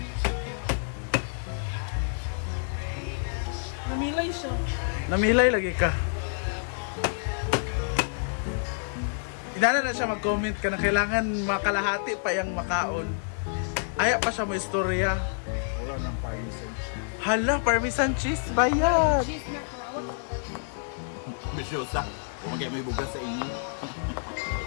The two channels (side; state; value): right; silent; digital silence